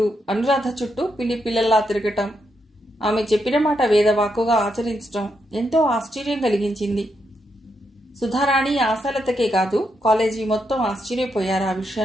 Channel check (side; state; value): both; normal; correlation 0.81